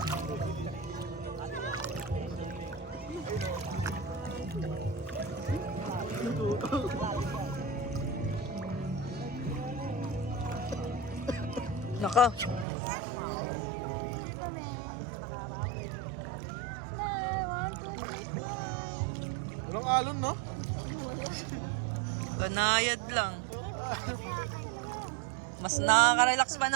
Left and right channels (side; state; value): left; drops out; at 12.7 s